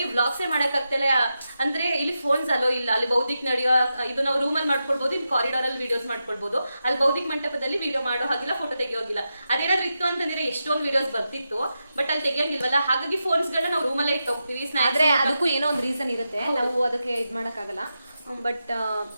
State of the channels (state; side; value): inverted; both; correlation -0.89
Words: ಬ್ಲಾಗ್ಸ್ ಮಾಡಕ್ ಆಗ್ತಿಲ್ಲ. ಅಂದ್ರೆ ಇಲ್ಲಿ ಫೋನ್ಸ್ ಅಲೋ ಇಲ್ಲ. ಅಲ್ಲಿ ಬೌದ್ಧಿಕ ನಡೆಯೋ ಇದು ನಾವು ರೂಮಲ್ಲಿ ಮಾಡ್ಕೊಳ್ಬಹುದು, ಇಲ್ಲಿ ಕಾರಿಡಾರ್ ಅಲ್ಲಿ ವಿಡಿಯೋಸ್ ಮಾಡ್ಕೊಳ್ಬಹುದು. ಅಲ್ಲಿ ಬೌದ್ಧಿಕ ಮಂಟಪದಲ್ಲಿ ವಿಡಿಯೋ ಮಾಡೋ ಹಾಗಿಲ್ಲ, ಫೋಟೋ ತೆಗಿಯೋಗಿಲ್ಲ. ಅದೇನಾದ್ರು ಇತ್ತು ಅಂತಂದ್ರೆ ಎಷ್ಟೊಂದು ವಿಡಿಯೋಸ್ ಬರ್ತಿತ್ತು, ಬಟ್ ಅಲ್ಲಿ ತೆಗಿಯಂಗಿಲ್ವಲ್ಲ. ಹಾಗಾಗಿ ಫೋನ್ಸ್ ಗಳನ್ನ ನಾವು ರೂಮಲ್ಲೇ ಇಟ್ಟು ಹೋಗ್ತೀವಿ. ಆದ್ರೆ ಅದಕ್ಕೂ ಏನೋ ಒಂದು ರೀಸನ್ ಇರುತ್ತೆ, ನಾವು ಅದಕ್ಕೆ ಇದ್ ಮಾಡಕ್ಕಾಗಲ್ಲ. ಬಟ್